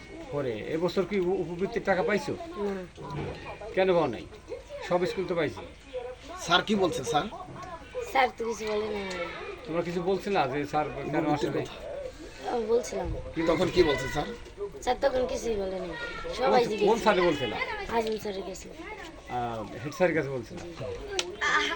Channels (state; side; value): identical; both; correlation 1.00